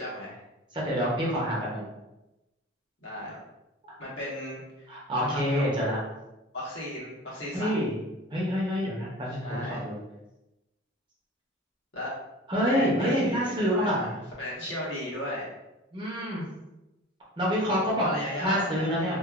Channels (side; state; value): both; normal; correlation 0.37